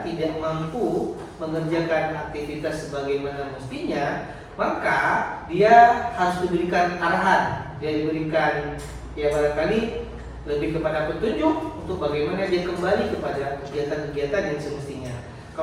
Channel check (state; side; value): identical; both; correlation 1.00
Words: tidak mampu mengerjakan aktivitas sebagaimana mestinya, maka dia harus diberikan arahan, dia diberikan barangkali lebih kepada petunjuk untuk bagaimana dia kembali kepada kegiatan-kegiatan yang semestinya.